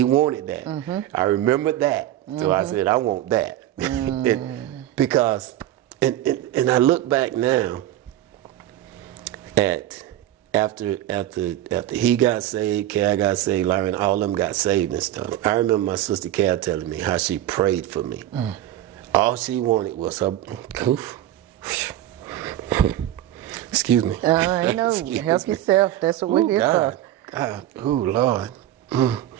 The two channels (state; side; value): quieter; left; 13.3 dB